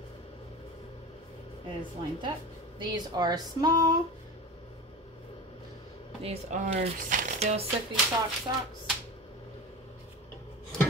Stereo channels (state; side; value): normal; both; correlation 0.29